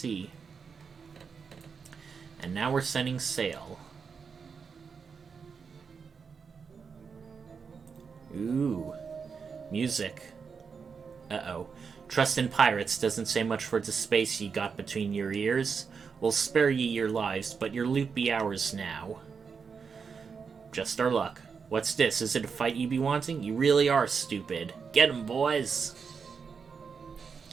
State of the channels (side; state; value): left; quieter; 5.8 dB